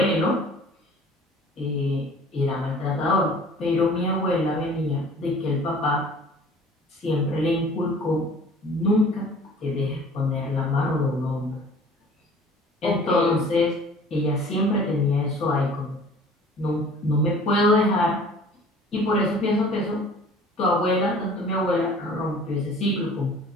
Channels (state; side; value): normal; both; correlation 0.48